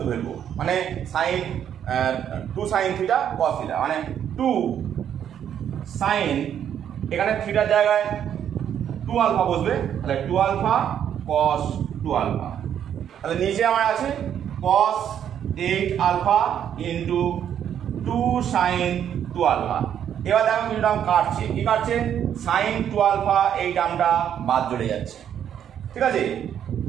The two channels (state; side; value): quieter; left; 9.4 dB